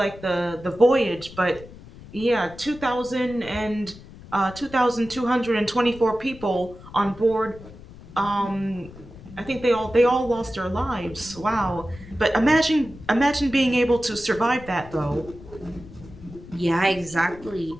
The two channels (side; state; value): left; noise; rumble, 18 dB below the sound